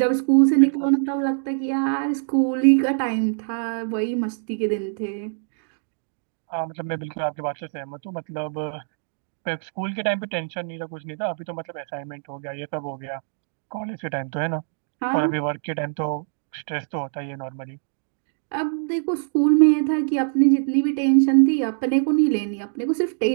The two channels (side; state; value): left; silent; digital silence